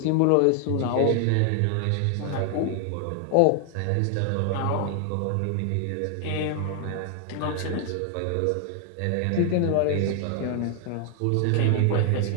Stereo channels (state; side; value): different; both; correlation 0.00